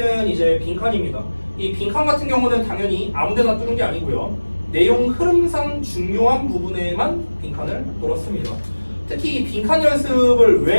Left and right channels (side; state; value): both; inverted; correlation -1.00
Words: 이제 빈칸입니다. 이 빈칸 같은 경우는 당연히 아무데나 뚫는 게 아니고요. 내용 흐름상 중요한 부분에만 빈칸을 뚫었습니다. 특히 이 빈칸 연습을